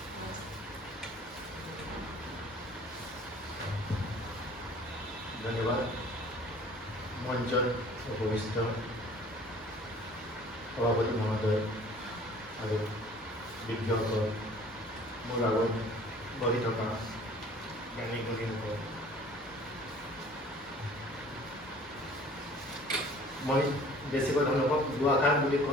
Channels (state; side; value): normal; both; correlation 0.50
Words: ধন্যবাদ। মঞ্চত উপবিষ্ট সভাপতি মহোদয় আৰু বিজ্ঞসকল, মোৰ আগত বহি থকা জ্ঞানী গুণীসকল, মই বেছিকৈ ধন্যবাদ দুআষাৰ বুলি